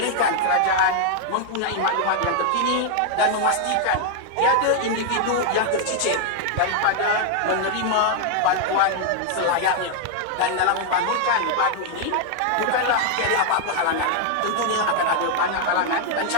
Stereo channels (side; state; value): both; different; correlation 0.00